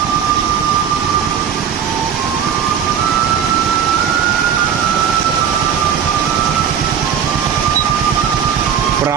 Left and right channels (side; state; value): left; quieter; 8.2 dB